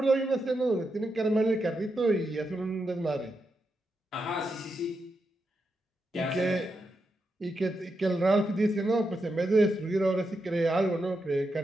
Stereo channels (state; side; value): normal; both; correlation 0.85